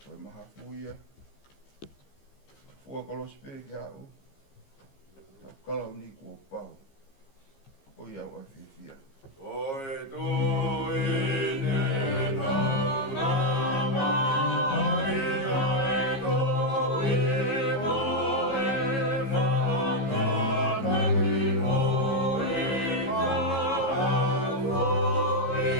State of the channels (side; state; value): right; late; 15 ms